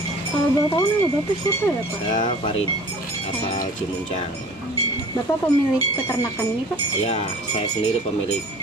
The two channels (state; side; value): normal; both; correlation 0.46